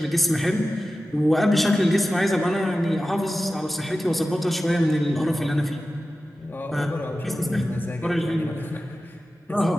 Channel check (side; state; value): both; normal; correlation 0.94